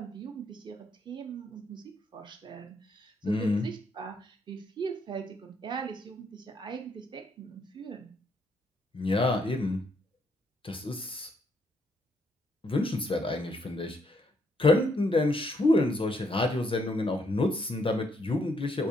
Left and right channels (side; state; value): both; normal; correlation 0.73